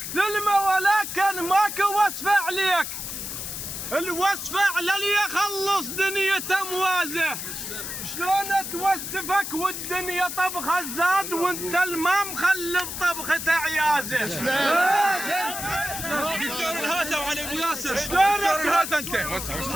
ثلمه ولكن ماكو وصفه عليك، الوصفه على اللي يخلص دنيته موازه. شلون توسفك والدنيا طبخه زاد وانت الماء مخلف طبخه عيازه. دكتور الهاسه وعلي ابو ياسر. شلون دكتور الهاسه انت؟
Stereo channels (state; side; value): noise; left; hiss, 6 dB below the sound